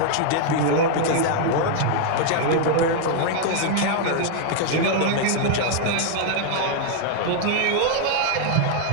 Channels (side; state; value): both; different; correlation 0.00